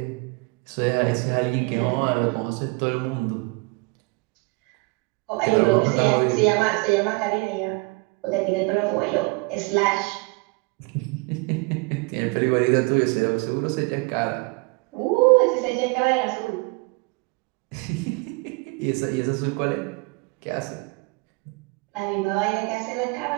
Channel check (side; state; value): left; quieter; 27.7 dB